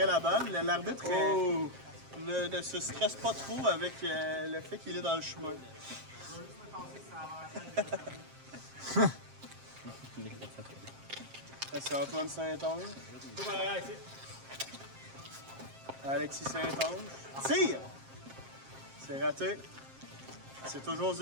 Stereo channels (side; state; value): left; late; 7.5 ms